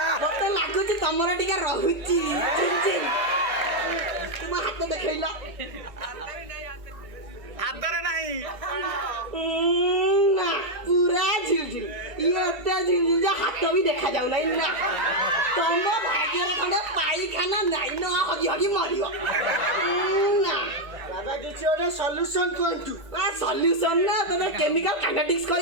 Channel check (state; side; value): late; left; 1.8 ms